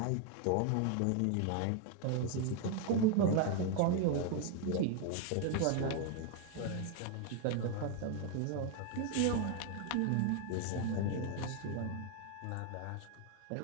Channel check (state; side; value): different; both; correlation 0.01